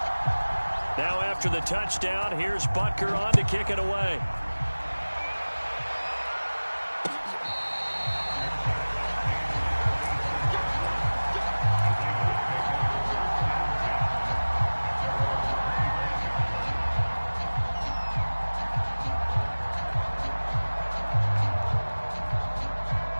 Now after the touchdown, here's Butker on to kick it away.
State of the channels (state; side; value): inverted; both; correlation -1.00